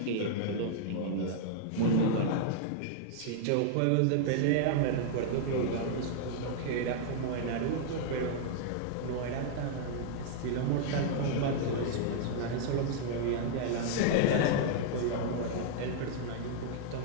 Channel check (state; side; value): different; both; correlation -0.01